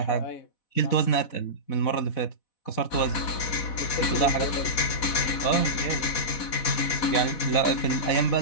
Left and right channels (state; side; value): late; right; 4.1 ms